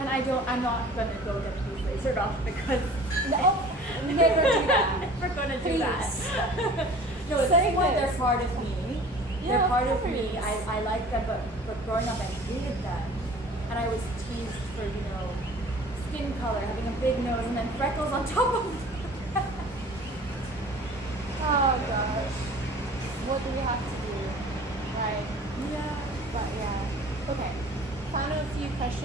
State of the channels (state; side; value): normal; both; correlation 0.45